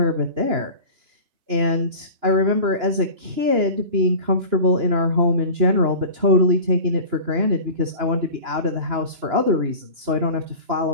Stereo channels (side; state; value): left; late; 2.9 ms